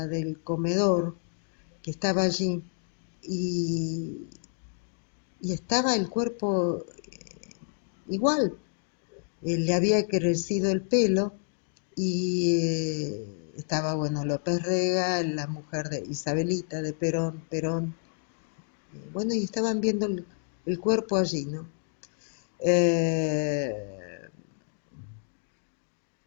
del comedor que estaba allí y, y estaba el cuerpo igual. Le había crecido el pelo y estaba, bueno, López Rega, la mujer de Isabelita, de Perón, bueno, y estaban viendo el cuerpo allí, ¿no? Eh,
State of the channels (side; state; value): right; silent; digital silence